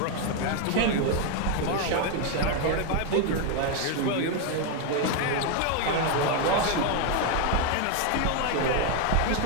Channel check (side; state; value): both; different; correlation 0.01